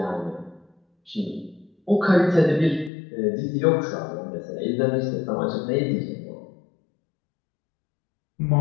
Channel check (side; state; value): right; drops out; at 2.9 s